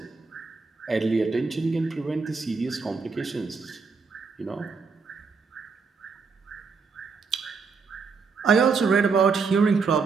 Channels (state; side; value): quieter; left; 4.9 dB